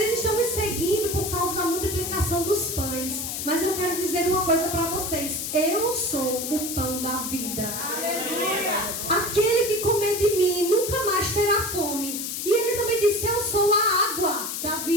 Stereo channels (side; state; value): left; noise; hiss, 4 dB below the sound